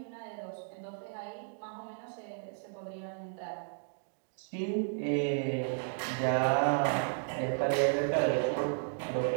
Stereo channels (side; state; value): left; silent; digital silence